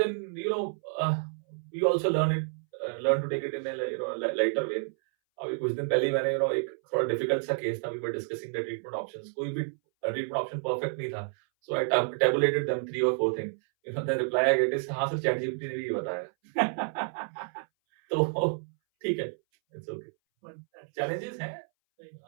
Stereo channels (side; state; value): left; silent; 58 dB below the other